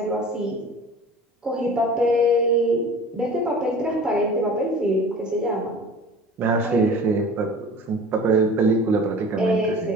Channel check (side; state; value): both; normal; correlation 0.41